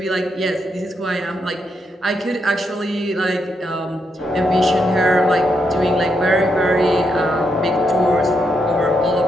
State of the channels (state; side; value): normal; both; correlation 0.80